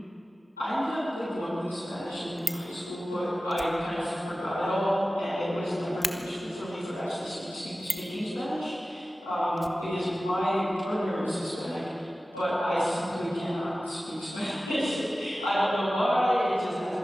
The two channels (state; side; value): normal; both; correlation 0.96